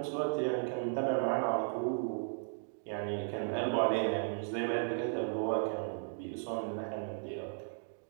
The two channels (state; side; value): silent; left; digital silence